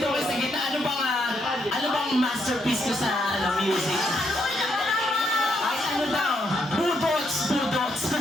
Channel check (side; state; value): both; normal; correlation 0.76